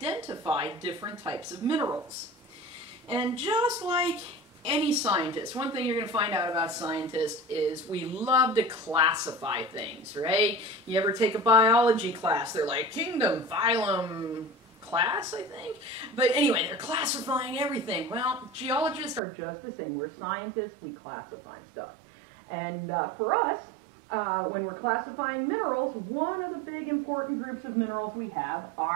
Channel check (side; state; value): left; drops out; at 19.2 s